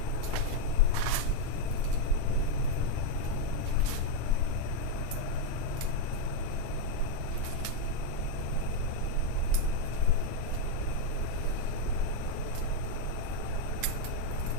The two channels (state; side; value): different; both; correlation 0.01